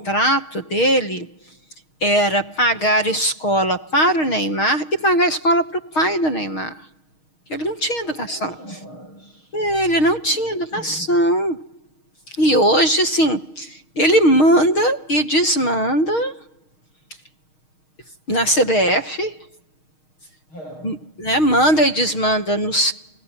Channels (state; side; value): late; right; 6.4 ms